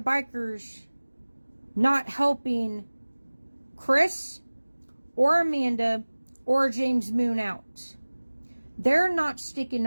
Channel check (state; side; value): inverted; both; correlation -1.00